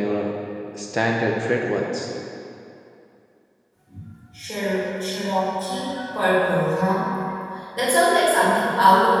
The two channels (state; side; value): identical; both; correlation 1.00